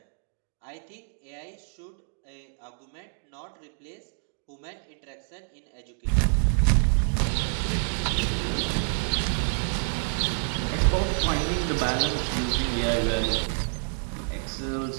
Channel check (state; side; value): silent; left; 60 dB below the other